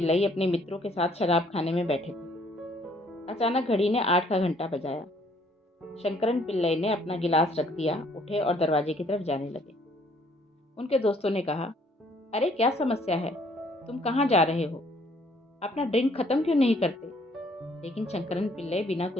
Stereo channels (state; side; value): normal; both; correlation 0.63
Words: अपने मित्रों के साथ शराब खाने में बैठे थे। अचानक घड़ी ने 8 का घंटा बजाया। शंकरन पिल्लई ने अपना गिलास रख दिया, उठे और दरवाजे की तरफ जाने लगे। उनके दोस्तों ने कहा, अरे क्या समस्या है, तुम कहाँ जा रहे हो? अपना ड्रिंक खत्म क्यों नहीं करते? लेकिन शंकरन पिल्लई बिना